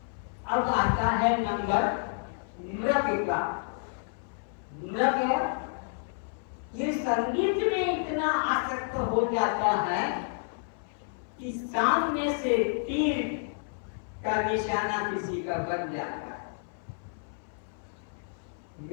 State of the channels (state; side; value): silent; right; 58 dB below the other